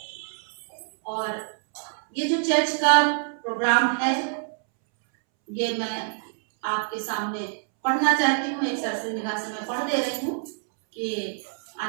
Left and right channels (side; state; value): left; silent; 61 dB below the other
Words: और ये जो चर्च का प्रोग्राम है, ये मैं आपके सामने पढ़ना चाहती हूँ। एक सरसरी निगाह से मैं पढ़ दे रही हूँ कि